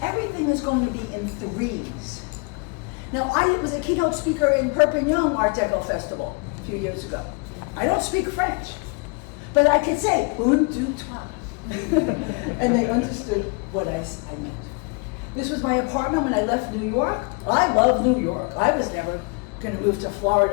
is going to be in threes. Now, I was a keynote speaker in Perpignan Art Deco Festival a few years ago. I don't speak French, but I could say, un, deux, trois. And they understood what I meant. This was my apartment when I left New York. I love New York. I was never going to move to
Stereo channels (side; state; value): right; quieter; 32.3 dB